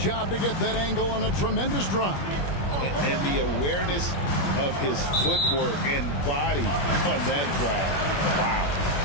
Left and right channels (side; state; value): right; late; 21 ms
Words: to get that angle on a tremendous drive. And the awareness of his footwork and body on that drive. Wow.